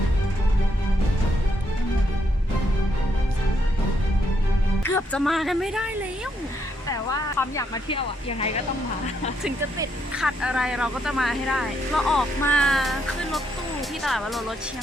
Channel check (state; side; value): normal; both; correlation 0.76